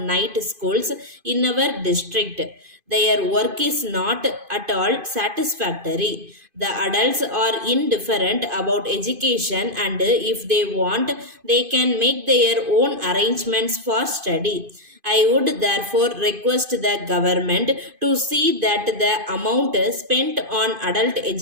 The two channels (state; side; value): late; left; 2.5 ms